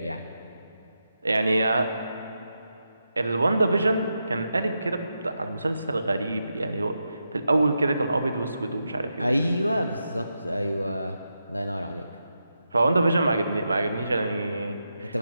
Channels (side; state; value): both; inverted; correlation -0.87